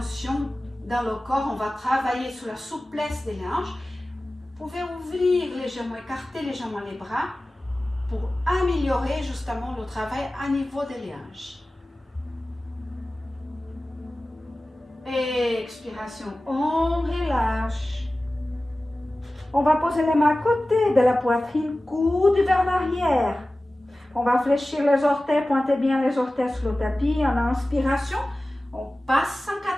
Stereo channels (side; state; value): both; normal; correlation 0.96